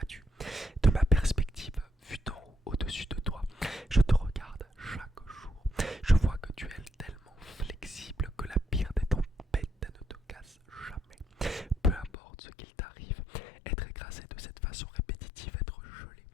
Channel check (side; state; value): right; drops out; at 12.1 s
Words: De ma perspective, vue d'en haut, au-dessus de toi, je te regarde chaque jour. Je vois que tu es tellement flexible que la pire des tempêtes ne te casse jamais. Peu importe ce qu'il t'arrive, être écrasé de cette façon répétitive, être gelé